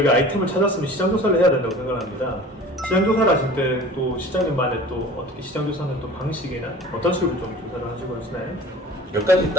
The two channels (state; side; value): normal; both; correlation 0.42